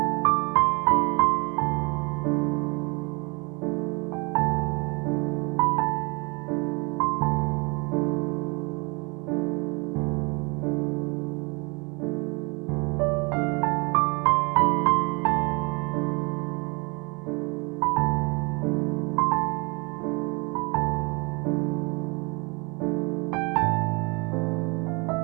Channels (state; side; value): quieter; left; 29.7 dB